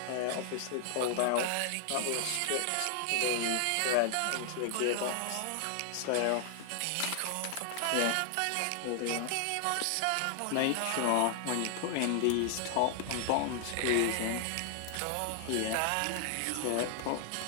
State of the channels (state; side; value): different; both; correlation 0.00